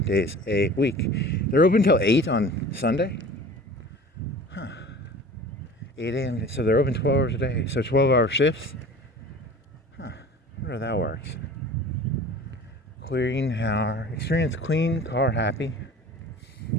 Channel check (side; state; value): both; normal; correlation 0.41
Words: days a week. They're open till 8 on Sunday? 8 a.m. So they're open 12 hours a day. So 12-hour shifts? I wonder how that works. Clean car. Experience clean car happy.